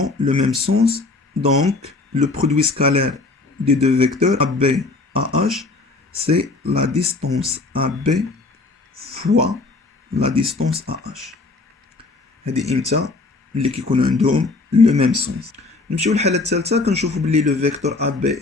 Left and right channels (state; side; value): quieter; right; 3.5 dB